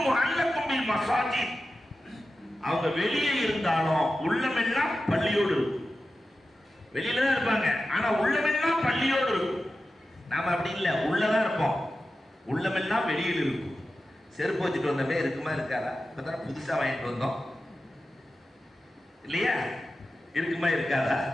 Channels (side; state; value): both; normal; correlation 0.93